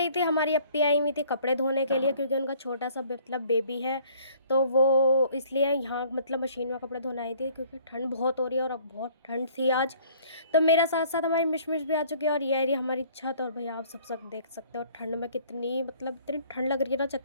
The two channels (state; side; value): inverted; both; correlation -0.56